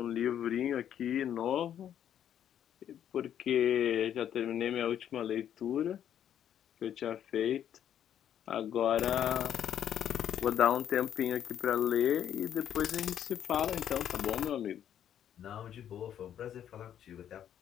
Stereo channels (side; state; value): right; quieter; 9.9 dB